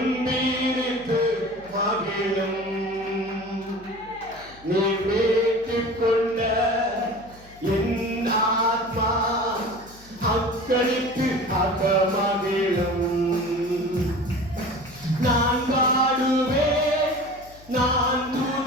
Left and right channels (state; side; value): noise; left; hum, 23 dB below the sound